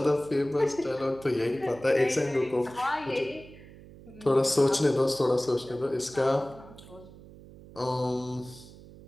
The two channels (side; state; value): right; noise; hum, 19 dB below the sound